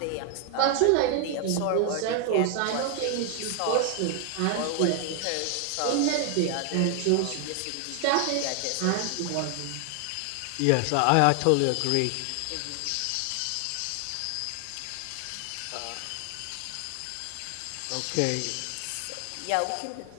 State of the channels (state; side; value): different; both; correlation 0.00